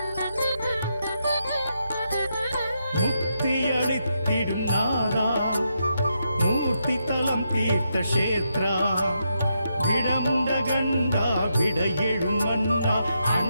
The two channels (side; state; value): both; inverted; correlation -0.82